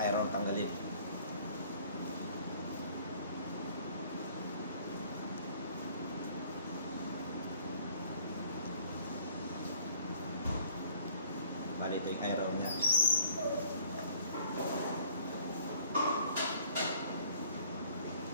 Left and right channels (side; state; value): both; inverted; correlation -0.55